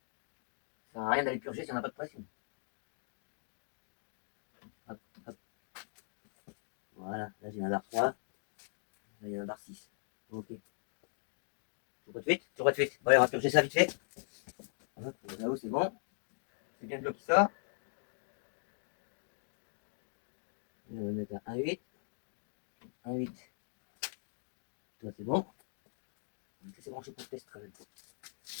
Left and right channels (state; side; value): silent; right; digital silence